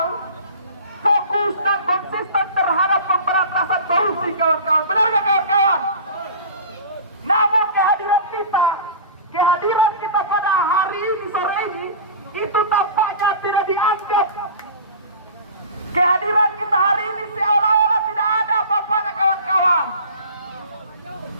fokus dan konsisten terhadap pemberantasan korupsi kawan-kawan. Benar gak kawan-kawan? Namun kehadiran kita pada hari ini, sore ini, itu tampaknya tidak dianggap. Kehadiran kita hari ini seolah-olah tidak ada apa-apanya kawan-kawan.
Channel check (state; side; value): inverted; both; correlation -0.37